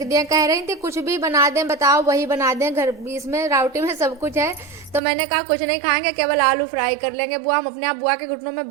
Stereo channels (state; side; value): drops out; left; at 5.0 s